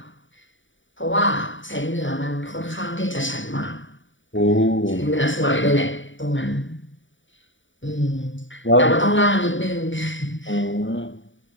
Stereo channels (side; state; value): right; late; 0.56 ms